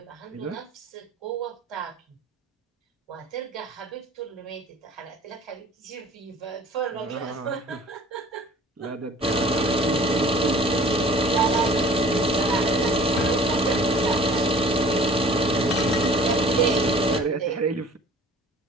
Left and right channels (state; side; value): normal; both; correlation 0.48